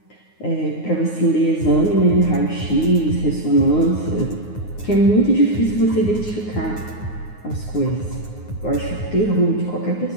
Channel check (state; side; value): late; right; 9.6 ms